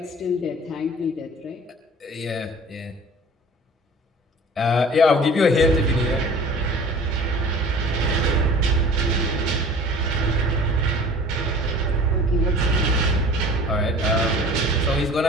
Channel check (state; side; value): normal; both; correlation 0.45